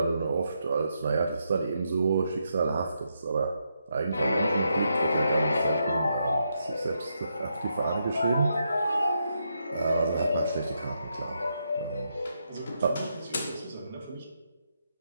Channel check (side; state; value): both; inverted; correlation -0.81